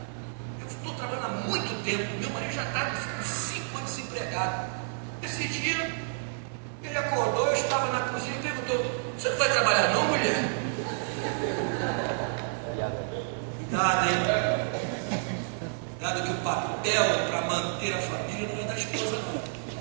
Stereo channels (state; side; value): silent; left; 58 dB below the other